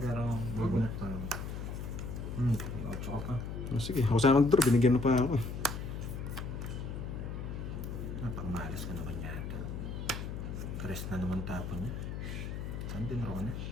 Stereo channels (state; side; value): noise; left; hum, 5 dB below the sound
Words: pero magunat pa. Ocho ka pa. Oh, sige, ako sana mag-draw. Binigyan mo pa ako. Napakamalas ka naman yata. Tres na naman tapon niya. Saan din ako na?